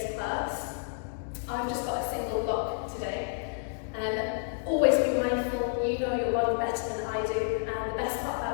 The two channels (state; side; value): silent; right; digital silence